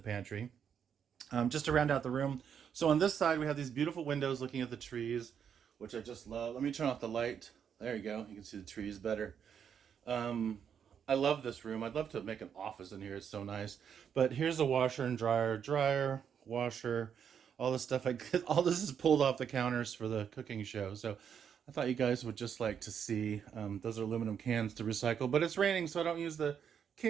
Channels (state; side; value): quieter; left; 7.9 dB